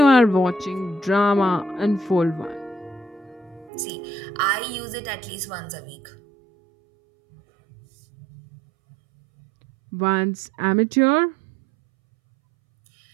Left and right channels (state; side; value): drops out; left; at 3.7 s